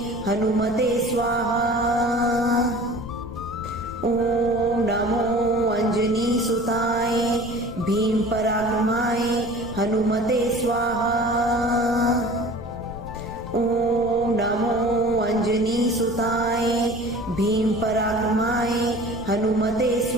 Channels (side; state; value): left; noise; rumble, 14 dB below the sound